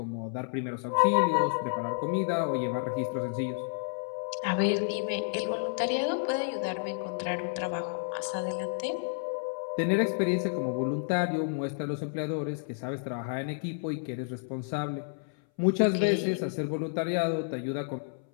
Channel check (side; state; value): right; silent; 58 dB below the other